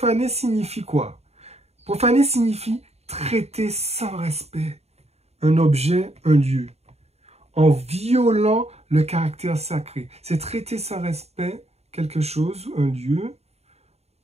signifie quoi? Profaner signifie traiter sans respect un objet, un lieu, en violant le caractère sacré. C'est traiter sans respect quelque chose, un lieu,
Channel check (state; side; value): late; left; 0.31 ms